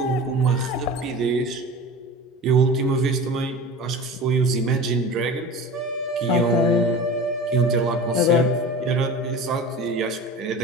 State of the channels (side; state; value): both; normal; correlation 0.34